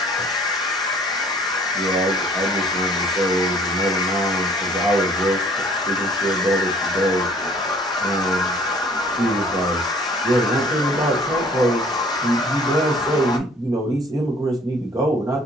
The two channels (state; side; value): normal; both; correlation 0.55